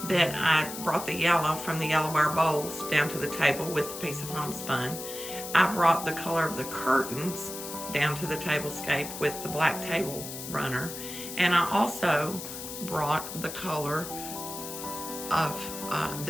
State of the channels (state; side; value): noise; left; hiss, 9 dB below the sound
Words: that I brought the yellow from the yellowware bowls down to the table with a piece of homespun. I brought the color of the curtains down to the tablescape with the black table runner. And I also brought the color of